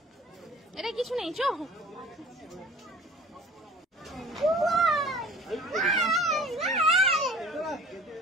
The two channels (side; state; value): both; normal; correlation 0.46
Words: এটা কিছু নেই। চো